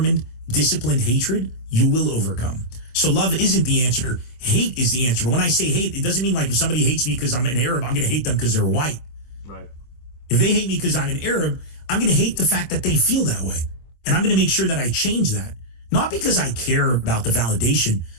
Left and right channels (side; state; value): right; late; 25 ms